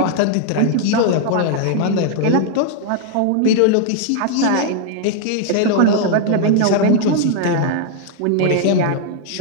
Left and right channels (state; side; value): different; both; correlation 0.00